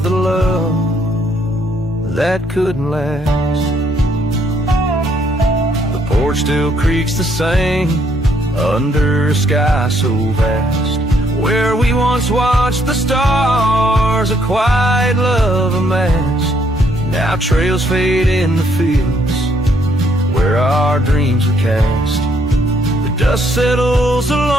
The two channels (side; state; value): both; normal; correlation 0.70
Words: the love that couldn't last. The porch still creaks the same under a sky so vast. Where we once watched the stars, a quiet love amassed. Now trails fade in the fields where our dreams were cast. The dust settles